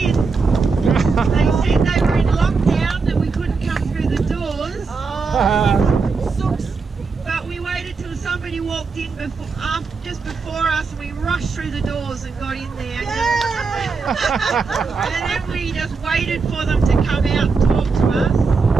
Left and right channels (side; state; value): left; quieter; 4.6 dB